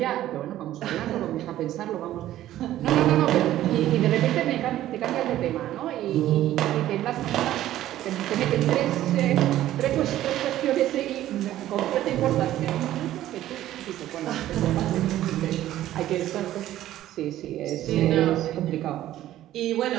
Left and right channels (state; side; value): quieter; left; 13.5 dB